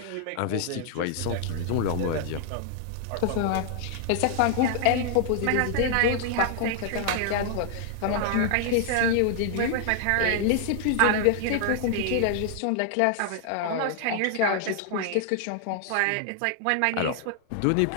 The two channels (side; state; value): both; different; correlation 0.00